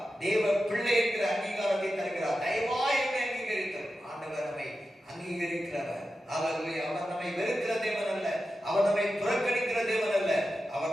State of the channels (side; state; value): both; normal; correlation 0.91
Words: தேவ பிள்ளை என்கிற அங்கீகாரத்தை தருகிறார். தயவாய் என்னை அங்கீகரித்தார். ஆண்டவர் நம்மை அங்கீகரிக்கிறவர். அல்லேலூயா. அவர் நம்மை வெறுக்கிற தேவன் அல்ல, அவர் நம்மை புறக்கணிக்கிற தேவன் அல்ல,